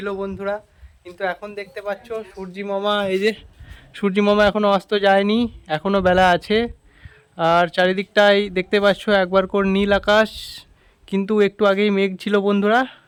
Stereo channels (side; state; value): both; identical; correlation 1.00